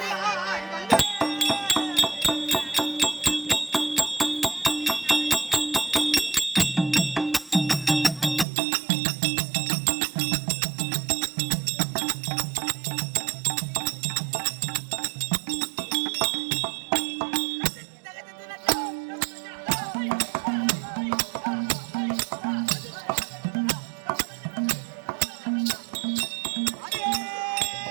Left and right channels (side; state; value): left; drops out; at 8.5 s